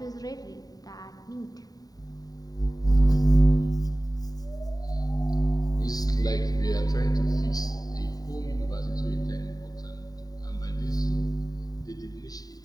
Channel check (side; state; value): right; late; 0.18 ms